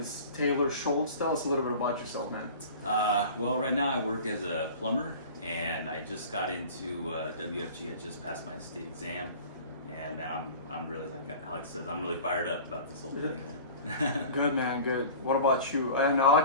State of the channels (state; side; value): inverted; both; correlation -0.40